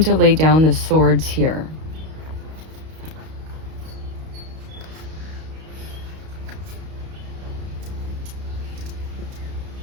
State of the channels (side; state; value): left; late; 32 ms